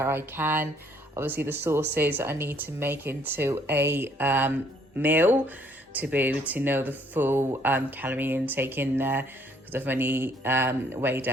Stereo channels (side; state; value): both; normal; correlation 0.64